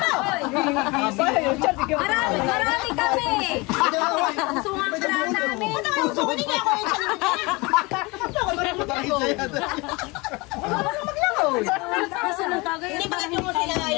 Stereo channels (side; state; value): right; quieter; 25.4 dB